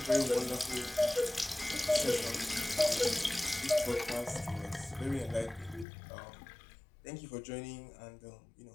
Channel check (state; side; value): drops out; right; at 5.9 s